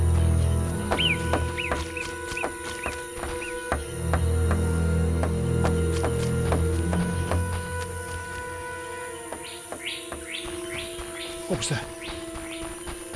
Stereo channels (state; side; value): identical; both; correlation 1.00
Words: What was that?